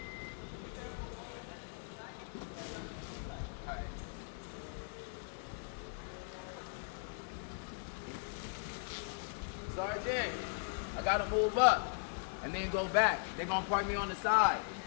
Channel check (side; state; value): right; silent; 52 dB below the other